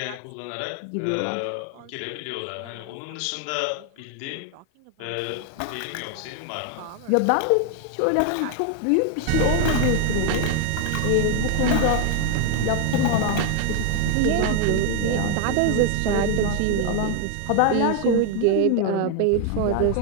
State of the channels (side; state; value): both; different; correlation 0.01